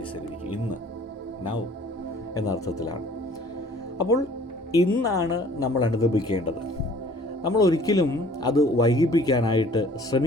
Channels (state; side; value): normal; both; correlation 0.53